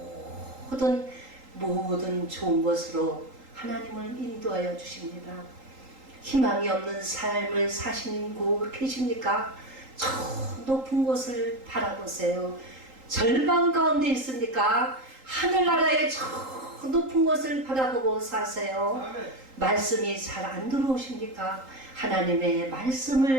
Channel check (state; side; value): late; left; 3.8 ms